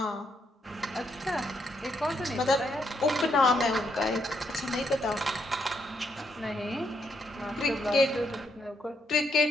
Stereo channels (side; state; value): both; normal; correlation 0.76